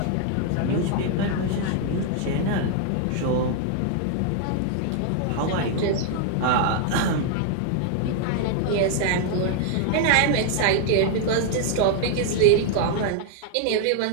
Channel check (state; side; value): different; both; correlation 0.00